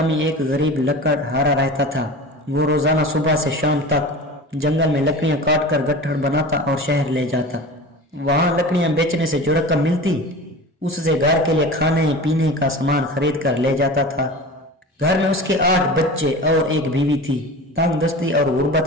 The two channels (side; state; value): both; normal; correlation 0.34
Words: ایک غریب لکڑ ہارا رہتا تھا۔ وہ روزانہ صبح سے شام تک جنگل میں لکڑیاں کاٹ کر گٹھڑ بناتا اور شہر لے جاتا۔ وہاں لکڑیاں بیچنے سے جو رقم ملتی اس سے گھر کے لیے کھانے پینے کا سامان خرید کر لے جاتا تھا۔ گھر میں اس کے 8 بچے اور ایک بیوی تھی۔ تنگ دستی اور